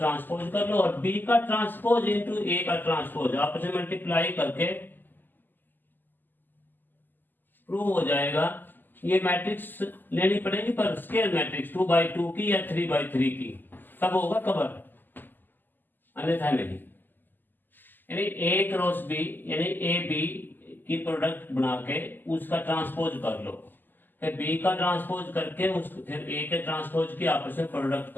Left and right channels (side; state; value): right; late; 0.090 ms